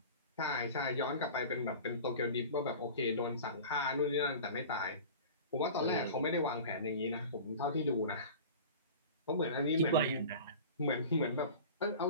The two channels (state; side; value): inverted; both; correlation -0.37